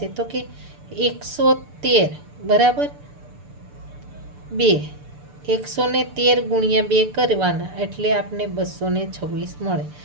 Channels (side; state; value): left; late; 6.8 ms